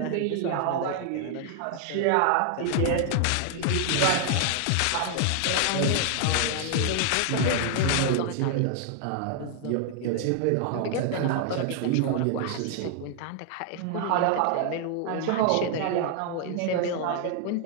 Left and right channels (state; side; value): different; both; correlation 0.00